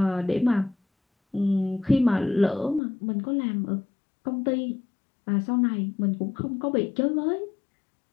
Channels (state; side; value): drops out; right; at 2.8 s